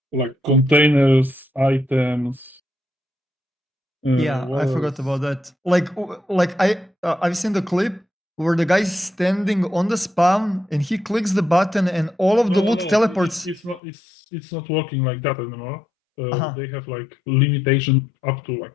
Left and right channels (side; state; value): right; drops out; at 13.8 s